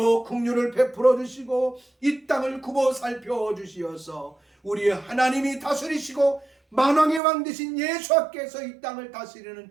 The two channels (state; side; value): drops out; left; at 7.2 s